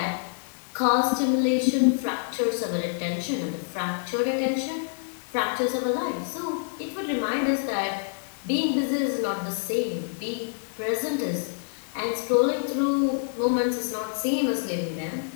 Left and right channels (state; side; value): silent; right; digital silence